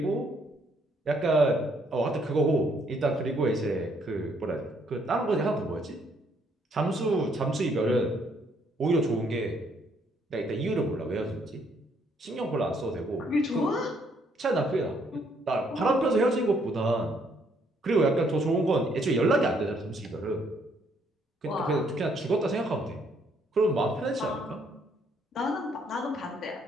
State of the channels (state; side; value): normal; both; correlation 0.69